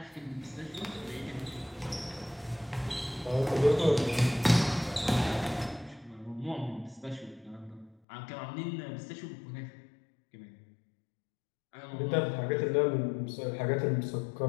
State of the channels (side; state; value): right; drops out; at 8.0 s